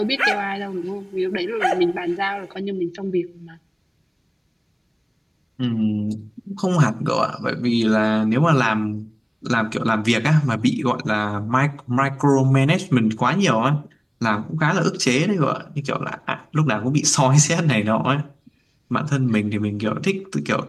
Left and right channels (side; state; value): both; identical; correlation 1.00